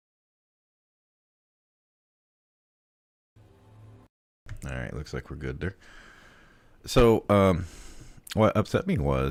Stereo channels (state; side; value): identical; both; correlation 1.00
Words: Alright, looks like we're good there. So, what upset me